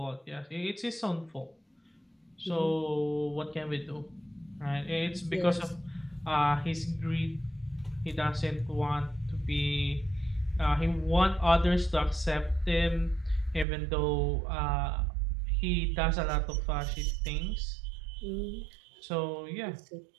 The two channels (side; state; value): left; drops out; at 13.7 s